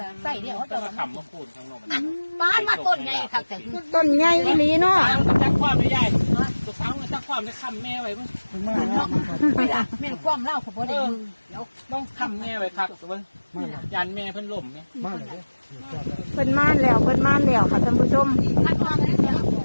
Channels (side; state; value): both; inverted; correlation -1.00